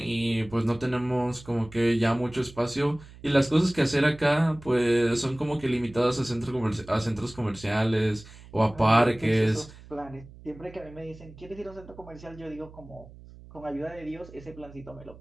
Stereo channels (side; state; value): right; noise; hum, 19 dB below the sound